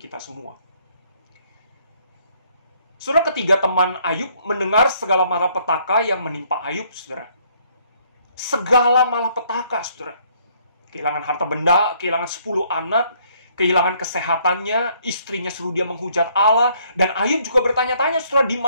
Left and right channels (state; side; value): inverted; both; correlation -0.66